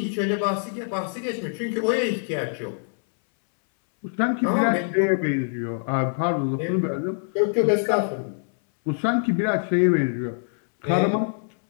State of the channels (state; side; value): silent; right; 62 dB below the other